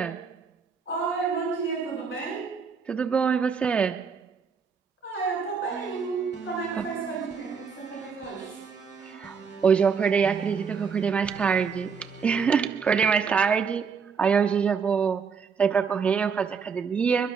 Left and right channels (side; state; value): left; quieter; 6.0 dB